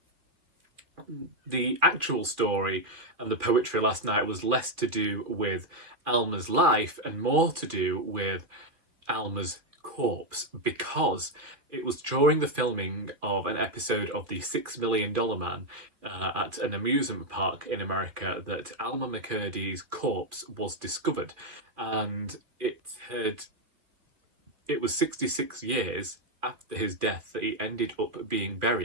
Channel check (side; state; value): left; late; 2.4 ms